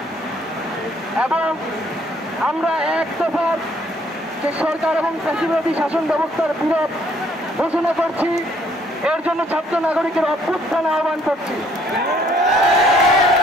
এবং আমরা এক দফার যে সরকার এবং ফ্যাসিবাদী শাসন ব্যবস্থার বিরোধ ঘোষণা করছি। এর জন্য ছাত্র নাগরিকের অভ্যুত্থান আহ্বান করছি।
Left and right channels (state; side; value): normal; both; correlation 0.64